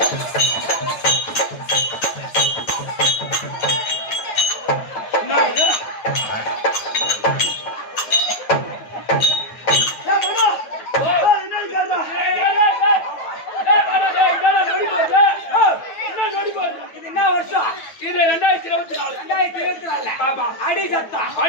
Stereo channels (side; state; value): right; late; 9.0 ms